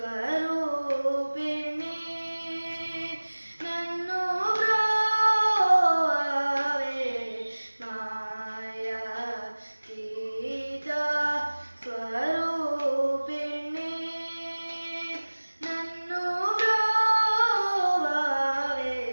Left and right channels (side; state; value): both; inverted; correlation -1.00